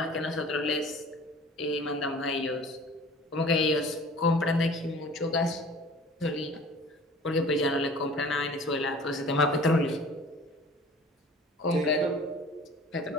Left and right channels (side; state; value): both; normal; correlation 0.45